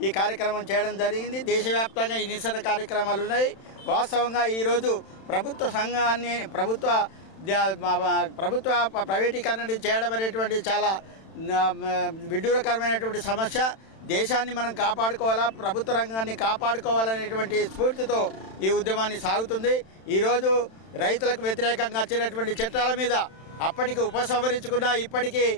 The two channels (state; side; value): late; right; 31 ms